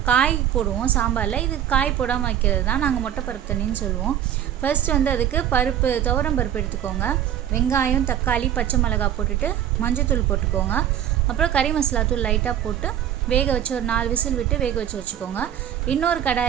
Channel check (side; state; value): left; quieter; 10.4 dB